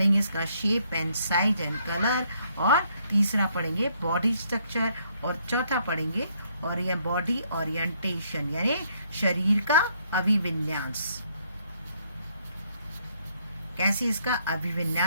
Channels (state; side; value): inverted; both; correlation -0.70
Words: इसका shape and size and colour, और तीसरा पढ़ेंगे बॉडी स्ट्रक्चर, और चौथा पढ़ेंगे और ये बॉडी ओरिएंटेशन यानी शरीर का अभिविन्यास, कैसे इसका